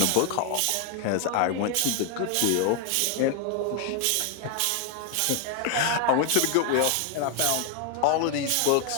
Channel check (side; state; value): both; different; correlation 0.00